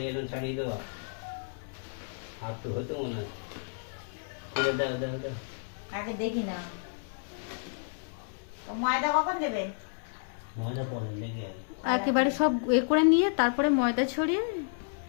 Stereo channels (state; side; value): silent; right; digital silence